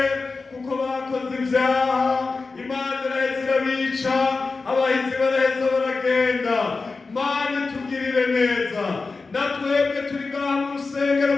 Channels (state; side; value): quieter; right; 4.1 dB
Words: kuko bakoze ivyaha, Imana iraheza irabica, abahizi baraheza baragenda. Mana tugirire neza, natwebwe turi ngaha mu rusengero